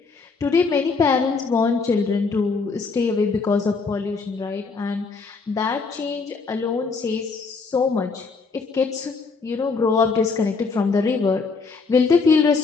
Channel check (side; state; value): right; quieter; 4.6 dB